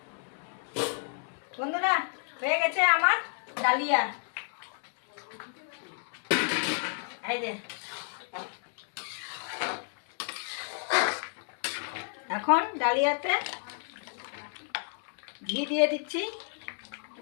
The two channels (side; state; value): right; silent; 57 dB below the other